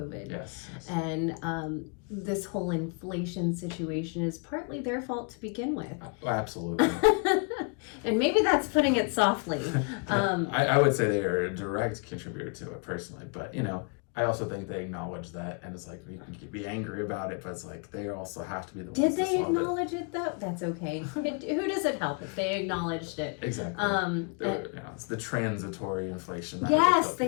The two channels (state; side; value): quieter; right; 35.5 dB